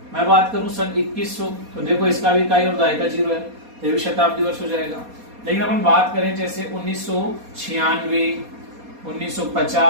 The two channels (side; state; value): left; late; 4.2 ms